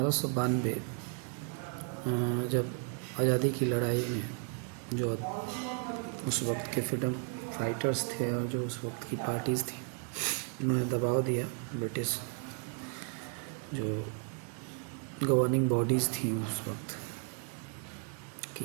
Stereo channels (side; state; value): left; quieter; 37.2 dB